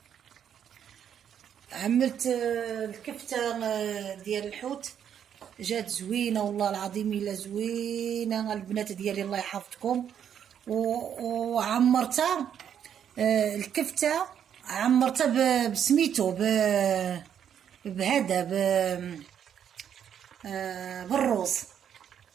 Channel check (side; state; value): left; quieter; 8.9 dB